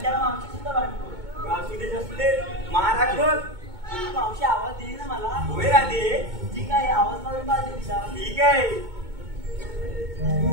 मावशी सुद्धा भांडखोर. असू दे महाराज बघ. मावशी आवाज देईल ना मला? होय राधे ठीक आहे, आवाज मारून पाहिजे तिला. ठीक आहे.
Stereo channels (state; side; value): late; left; 2.2 ms